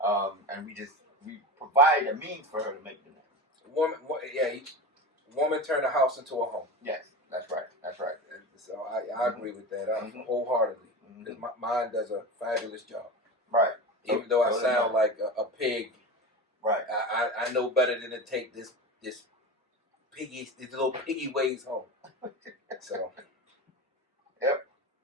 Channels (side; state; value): both; normal; correlation 0.26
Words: we provide a means for her to make the nest. Woman turn the house into a home. Yes, that's right. That's right. And so I agree with that wholeheartedly. Because mine does a fabulous job. Right. Even though I sound like a pig. Right. I know better than to take this little piggy ways home. So. Yep.